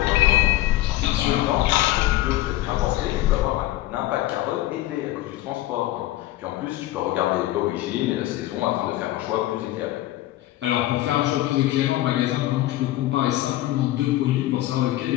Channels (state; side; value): quieter; right; 15.8 dB